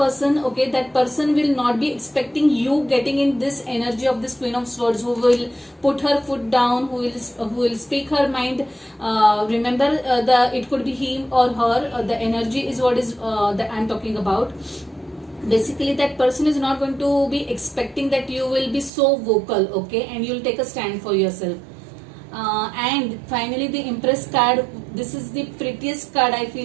Okay, that person will not be expecting you getting in this energy of this Queen of Swords, who will put her foot down, who will speak her mind. Remember, it could be him or her. The energy is what is that I'm talking about. Basically, that person is not going to be expecting that you will be so vocal. Okay, and you'll take a stand for yourself. And finally, the Empress card. This is the prettiest card I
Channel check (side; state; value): left; drops out; at 18.9 s